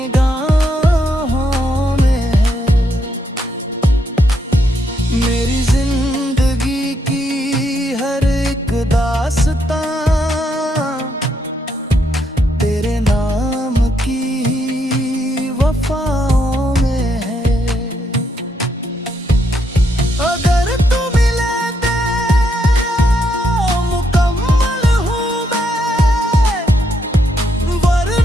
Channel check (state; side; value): normal; both; correlation 0.76